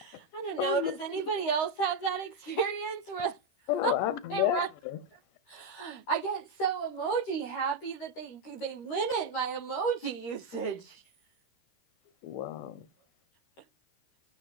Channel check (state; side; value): late; right; 13 ms